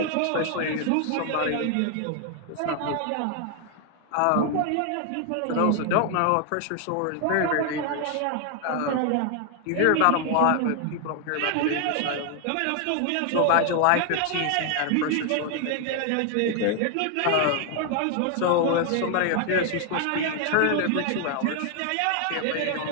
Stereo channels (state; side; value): different; both; correlation 0.00